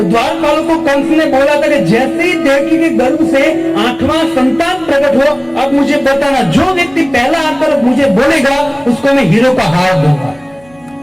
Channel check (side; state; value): right; noise; hum, 29 dB below the sound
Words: द्वारपालों को कंस ने बोला था कि जैसे ही देवकी के गर्भ से 8वां संतान प्रकट हो, अब मुझे बताना, जो व्यक्ति पहला आकर मुझे बोलेगा उसको मैं हीरो का हार दूंगा।